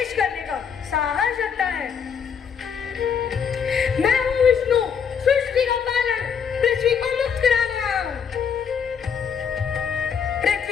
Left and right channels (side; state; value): right; quieter; 7.0 dB